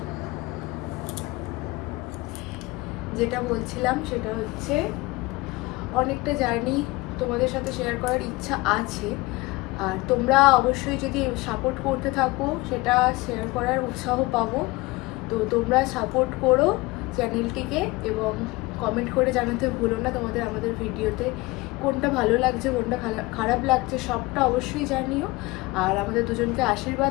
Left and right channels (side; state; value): right; quieter; 21.9 dB